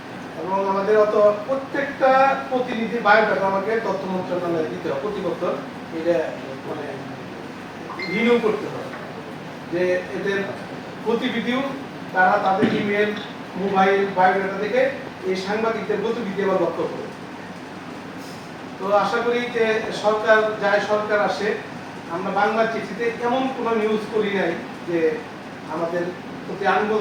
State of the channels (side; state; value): both; identical; correlation 1.00